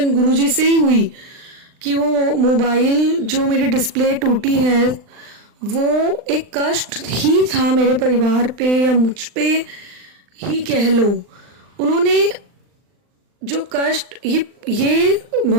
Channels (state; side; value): late; left; 39 ms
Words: गुरुजी से ही हुई कि वो मोबाइल जो मेरी डिस्प्ले टूटी है वो एक कष्ट ही था मेरे परिवार पे या मुझ पे ही कह लो। उन्होंने जो कष्ट ये